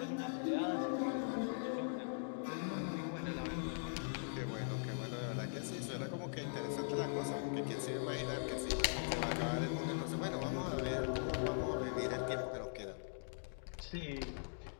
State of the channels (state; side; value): silent; right; digital silence